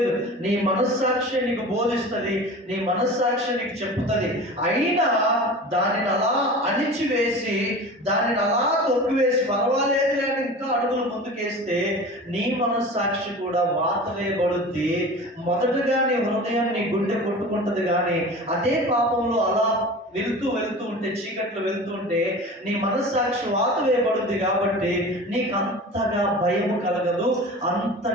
నీ మనస్సాక్షి నీకు బోధిస్తుంది, నీ మనస్సాక్షి నీకు చెప్తుంది. అయినా దానిని అలా అణిచివేసి, దానిని అలా తొక్కివేసి పర్వాలేదు లేని ఇంకా అడుగులు ముందుకేస్తే నీ మనస్సాక్షి కూడా వాత వేయబడుద్ది. మొదటగా నీ హృదయం, నీ గుండె కొట్టుకుంటుంది. కానీ అదే పాపంలో అలా వెళ్తూ ఉంటే, చీకట్లో వెళ్తూ ఉంటే నీ మనస్సాక్షి వాత వేయబడుద్ది. కాబట్టి నీకు అంతగా భయం కలగదు,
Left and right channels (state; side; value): normal; both; correlation 0.36